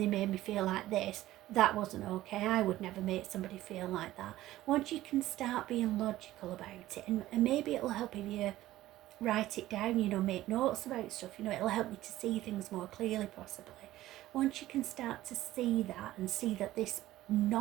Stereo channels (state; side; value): quieter; left; 15.3 dB